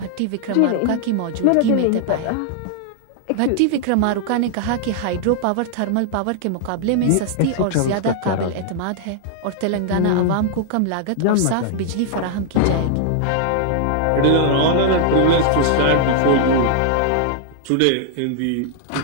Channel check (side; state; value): both; different; correlation -0.01